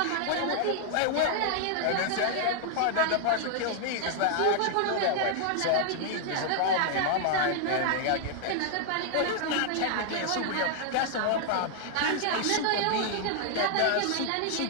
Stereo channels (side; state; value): both; different; correlation 0.00